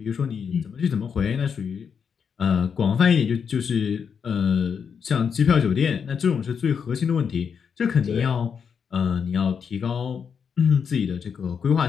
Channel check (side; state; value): right; quieter; 6.7 dB